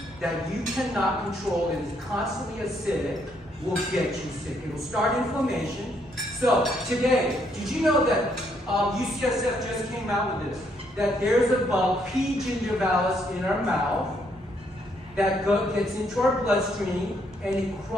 that you cannot control. It is constantly acidic, will get you sick. It will start inflammation. So today, did you know that UCSF just came out with this? That there's a bug, P. gingivalis, in our mouth that gets into our bloodstream and it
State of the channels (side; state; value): both; normal; correlation 0.72